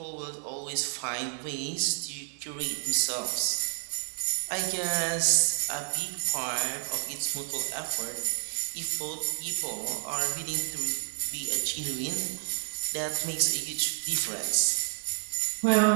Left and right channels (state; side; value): silent; left; digital silence